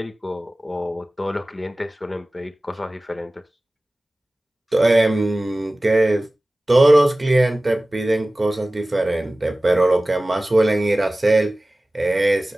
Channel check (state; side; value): normal; both; correlation 0.97